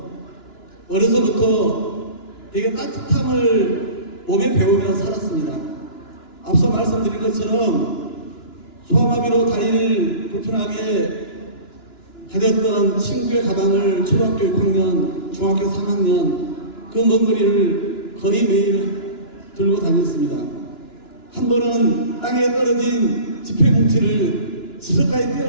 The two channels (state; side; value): late; right; 2.9 ms